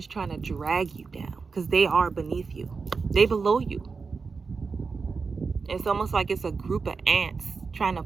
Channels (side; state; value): left; quieter; 4.8 dB